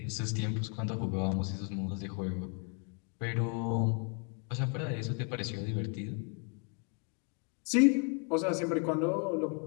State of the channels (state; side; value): quieter; right; 36.9 dB